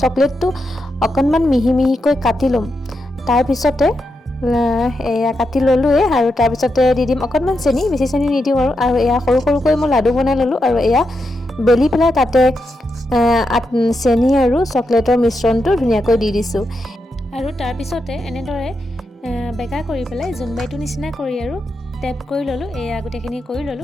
চকলেটটো অকণমান মিহি মিহিকৈ কাটি ল'ম। তাৰপিছতে এয়া কাটি ল'লোৱে, আৰু তাৰপিছতে দি দিম অকণমান চেনি, বেছি চেনি নিদিওঁ আৰু এয়া সৰু সৰুকৈ মই লাডু বনাই ল'লোঁ। আৰু এয়া বেলি পেলাই তাতে চেনি আৰু চকলেটৰ মিশ্ৰণটো ধুনীয়াকৈ দি দিছোঁ। আৰু তাৰপিছতে এনেদৰে বেকা কৰি পেলাই জোনবাইটোৰ নিচিনা কৰি আৰু টেপ কৰি ল'লোঁ। এয়া গোটেইখিনি কৰি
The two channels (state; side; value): normal; both; correlation 0.85